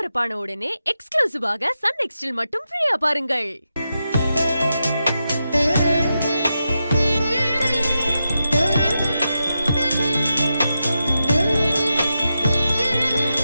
உடனே எக்ஸ்க்ளூசிவாக சன் நெக்ஸ்டில் மட்டும் ஃப்ரீயா பாருங்கள்.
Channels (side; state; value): both; inverted; correlation -0.88